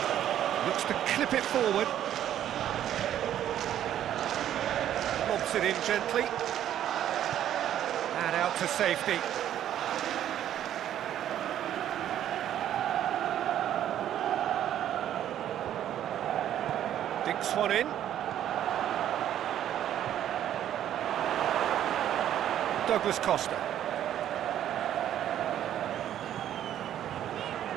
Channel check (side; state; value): left; quieter; 11.1 dB